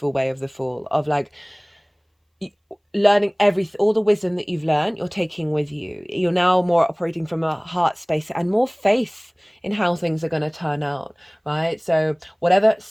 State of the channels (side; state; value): both; identical; correlation 1.00